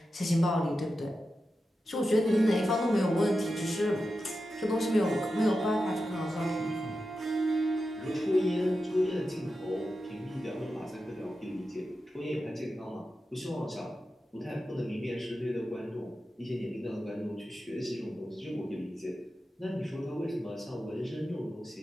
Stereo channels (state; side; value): normal; both; correlation 0.91